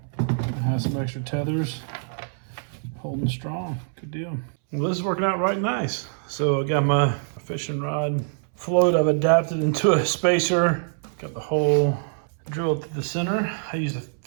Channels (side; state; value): left; silent; 62 dB below the other